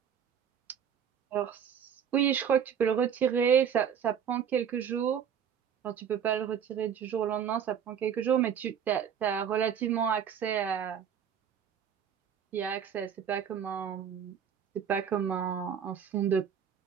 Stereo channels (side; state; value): left; quieter; 8.2 dB